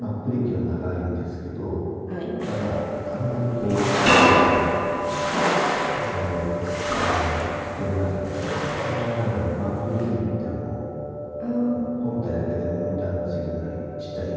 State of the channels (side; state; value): both; identical; correlation 1.00